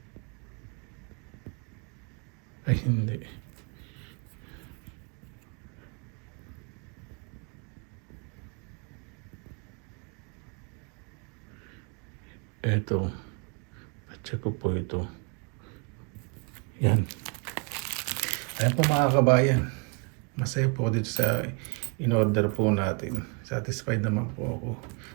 Ay, hindi. Ito. Check ko po ito. Yan. Ayan po mga kabayan. Masaya po dito sa in-order po natin. Satisfied naman po ako.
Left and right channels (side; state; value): left; quieter; 35.4 dB